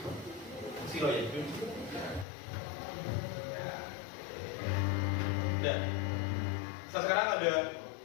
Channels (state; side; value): drops out; right; at 2.2 s